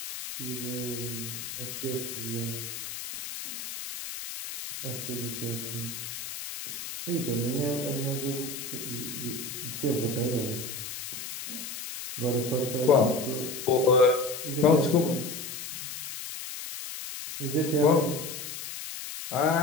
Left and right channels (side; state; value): left; noise; hiss, 8 dB below the sound